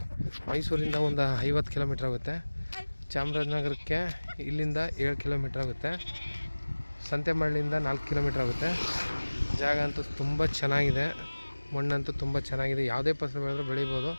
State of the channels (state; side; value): inverted; both; correlation -1.00